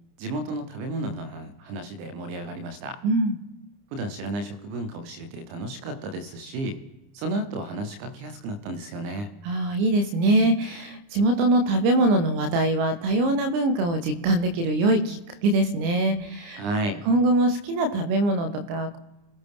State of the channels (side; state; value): left; late; 29 ms